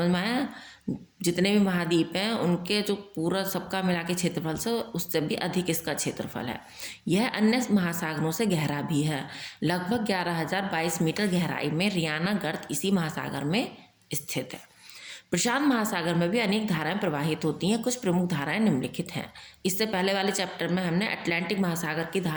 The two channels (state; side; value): identical; both; correlation 1.00